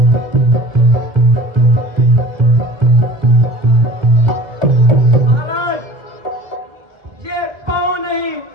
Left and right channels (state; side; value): late; left; 2.0 ms